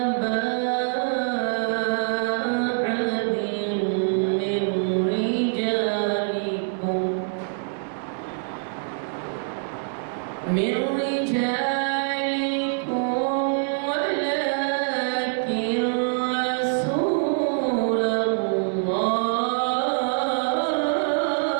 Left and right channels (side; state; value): left; silent; digital silence